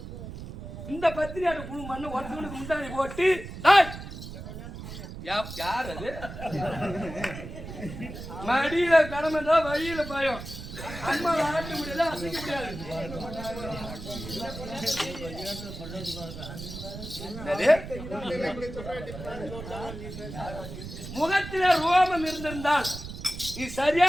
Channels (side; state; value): right; noise; rumble, 10 dB below the sound